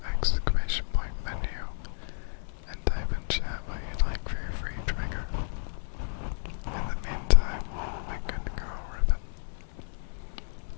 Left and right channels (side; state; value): right; silent; 57 dB below the other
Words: exclamation point menu and type in chat what you'd like for your free trigger. In the meantime, my good girl Ribbon,